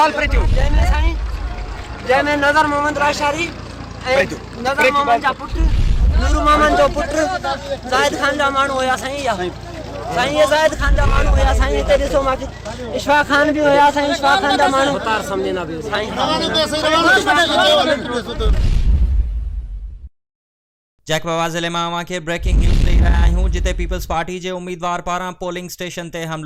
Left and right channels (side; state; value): both; identical; correlation 1.00